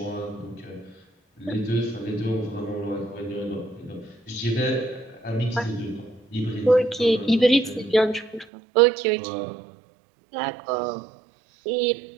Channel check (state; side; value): drops out; left; at 8.5 s